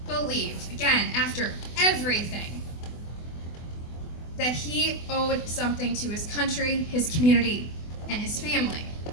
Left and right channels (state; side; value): late; right; 24 ms